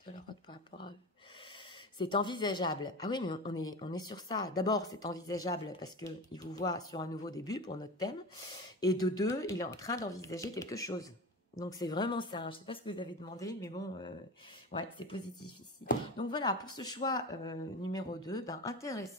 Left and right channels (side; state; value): both; normal; correlation 0.28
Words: de leur autre par rapport à eux. C'est envisageable. Ah oui, mais on est sur ça. D'abord, c'est envisageable parce qu'il vous voit sur un nouveau début pour notre thème. Et de deux, il est en train d'envisager quelque chose. Donc, c'est vraiment ça. Je ne sais pas ce que vous avez demandé, mais bon, ouais, c'est positif ici. Donc, voilà, pour ce choix numéro 2, ben,